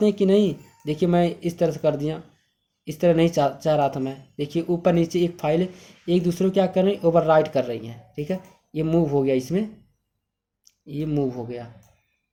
हैं कि नहीं, देखिए मैं इस तरह से कर दिया, इस तरह नहीं चाह रहा था मैं, देखिए ऊपर नीचे एक फाइल एक दूसरे को क्या कर रही है, ओवर राइट कर रही हैं, ठीक है। ये मूव हो गया, इसमें ये मूव हो गया,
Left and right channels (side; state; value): both; identical; correlation 1.00